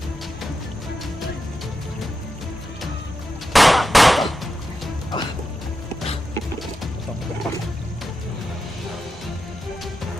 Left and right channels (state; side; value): normal; both; correlation 0.89